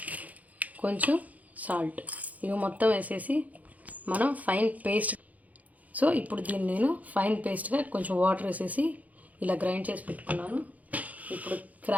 కొంచెం సాల్ట్, ఇవి మొత్తం వేసేసి మనం ఫైన్ పేస్ట్. సో ఇప్పుడు దీన్ని నేను ఫైన్ పేస్ట్గా కొంచెం వాటర్ వేసేసి ఇలా గ్రైండ్ చేసి పెట్టుకున్నాను. ఇప్పుడు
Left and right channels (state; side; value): late; left; 0.075 ms